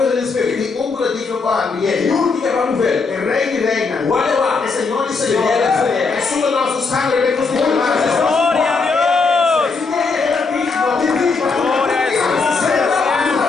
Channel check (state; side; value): quieter; right; 4.4 dB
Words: besoin d'espérer. E um digno para Il y a abrir. un qui est capable d'ouvrir. É rei de reina. Whatever. É Senhor de Senhor. É sua nosso sangue. É nosso